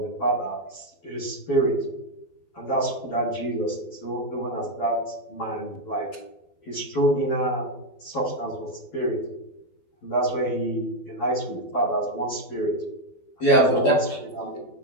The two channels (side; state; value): right; late; 12 ms